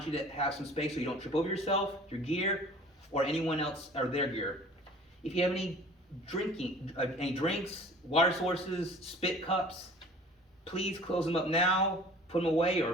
you to have some space so you don't trip over yourself, your gear, or anyone else or their gear. If you have any drinks, water sources, spit cups, please close them up now, put them away,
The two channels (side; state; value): both; normal; correlation 0.47